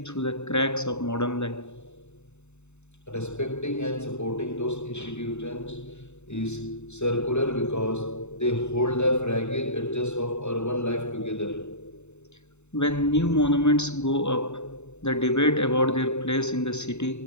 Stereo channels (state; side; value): late; right; 0.82 ms